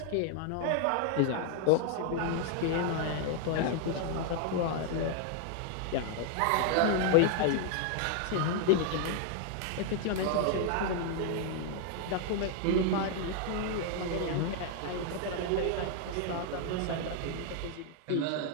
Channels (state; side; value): different; both; correlation 0.00